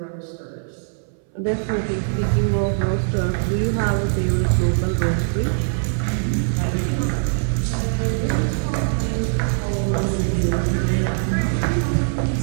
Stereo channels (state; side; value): silent; left; 63 dB below the other